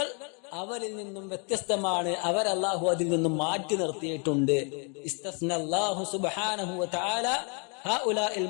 അവരിൽ നിന്നും വ്യത്യസ്തമാണ്. അവർ അല്ലാഹു അതിൽ നിന്നും മാറ്റി നിർത്തിയിട്ടുണ്ട്. ഇസ്തസ്നല്ലാഹു സുബ്ഹാനഹു വ തആല ഹഉലാഇൽ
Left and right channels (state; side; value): quieter; right; 37.1 dB